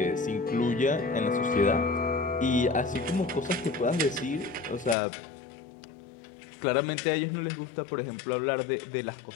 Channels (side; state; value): right; drops out; at 5.0 s